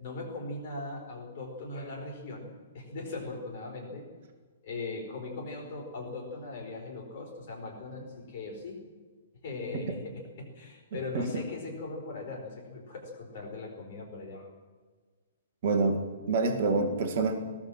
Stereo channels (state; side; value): inverted; both; correlation -0.46